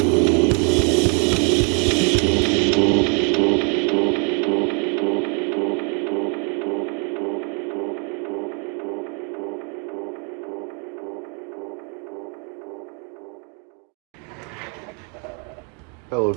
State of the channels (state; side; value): quieter; left; 37.4 dB